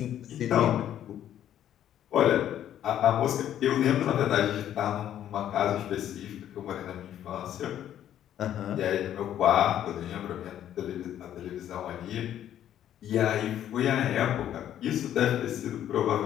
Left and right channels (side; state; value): right; quieter; 11.0 dB